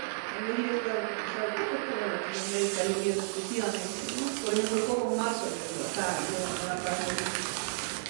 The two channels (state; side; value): silent; left; digital silence